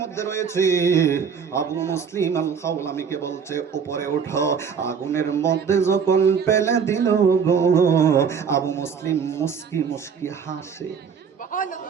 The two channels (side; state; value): left; quieter; 6.6 dB